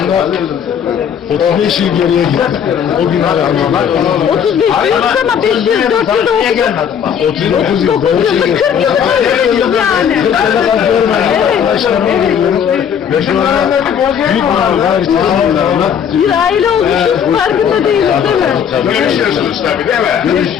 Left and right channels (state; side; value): quieter; right; 8.1 dB